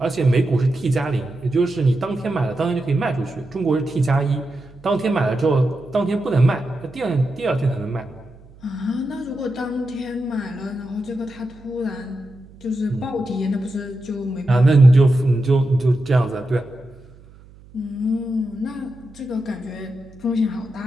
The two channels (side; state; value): right; noise; hum, 23 dB below the sound